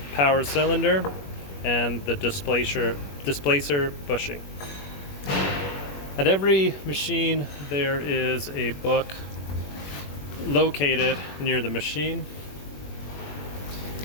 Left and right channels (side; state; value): right; late; 21 ms